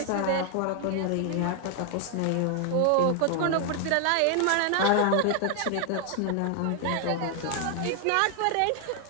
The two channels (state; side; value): different; both; correlation 0.00